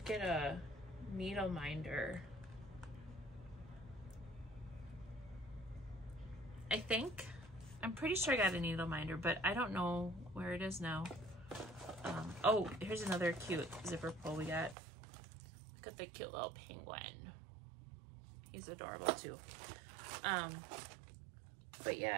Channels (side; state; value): left; drops out; at 14.8 s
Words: get a needle minder. I think. I'm pretty sure I got a needle minder, but I don't know where it is now. Oh, here's another cute zipper pull we got. Look at the cute little penguin. He's adorable too. But